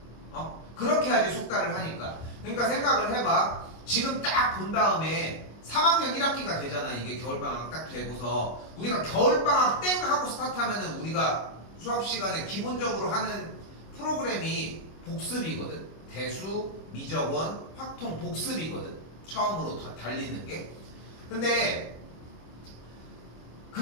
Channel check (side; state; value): right; late; 25 ms